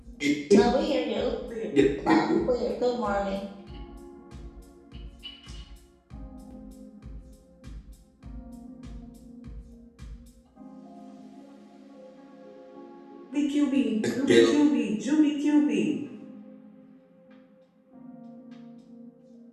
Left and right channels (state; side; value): identical; both; correlation 1.00